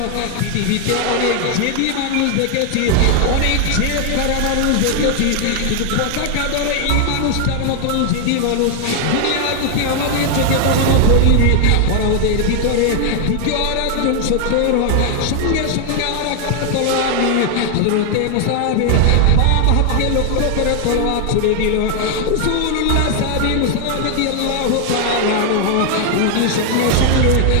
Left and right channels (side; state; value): both; different; correlation 0.00